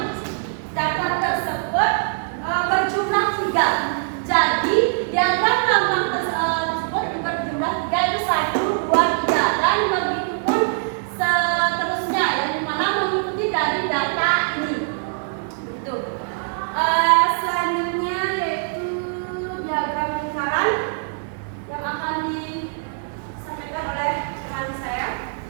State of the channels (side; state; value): left; silent; digital silence